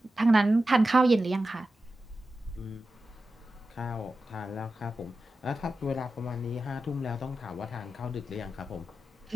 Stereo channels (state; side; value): normal; both; correlation 0.92